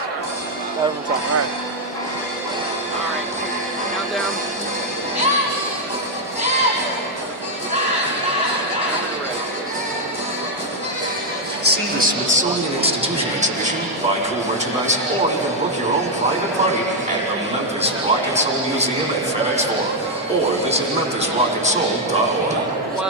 Start from the top. All right. All right. Countdown. See the Smithsonian Institution exhibition, buy cool merchandise, or even book your own private party at the Memphis Rock and Soul Museum at FedEx Forum, or visit memphisrockandsoul.org.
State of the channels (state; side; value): normal; both; correlation 0.00